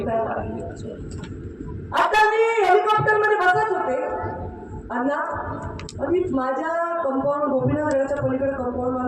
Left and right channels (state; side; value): identical; both; correlation 1.00